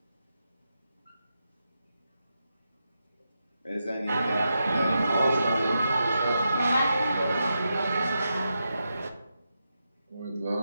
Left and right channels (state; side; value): inverted; both; correlation -0.87